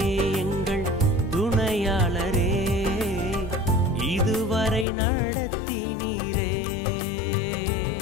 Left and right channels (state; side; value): drops out; right; at 4.9 s